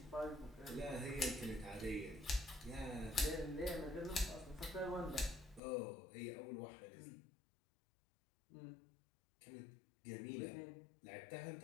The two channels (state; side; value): drops out; right; at 5.6 s